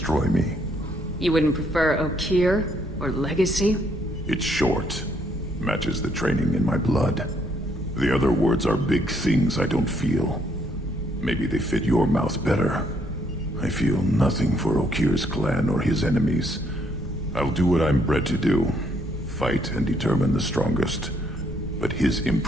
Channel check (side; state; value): both; normal; correlation 0.70